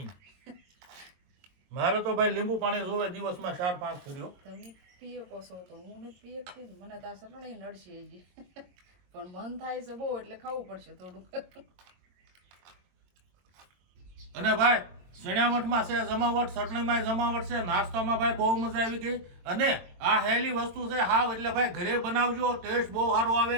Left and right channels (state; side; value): late; left; 22 ms